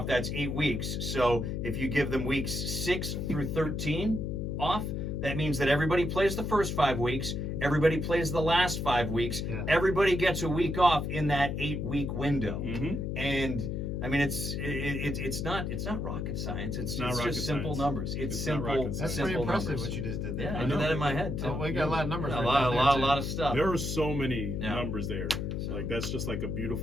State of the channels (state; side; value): noise; left; hum, 2 dB below the sound